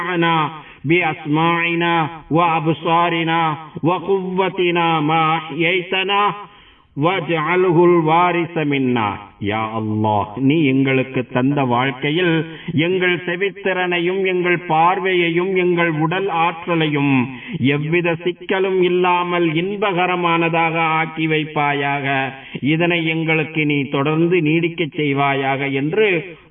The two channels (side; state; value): both; identical; correlation 1.00